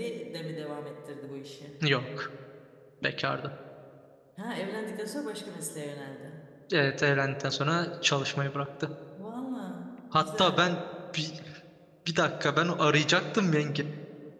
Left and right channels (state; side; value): identical; both; correlation 1.00